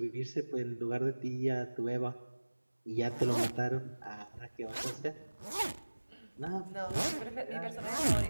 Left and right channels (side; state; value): both; inverted; correlation -1.00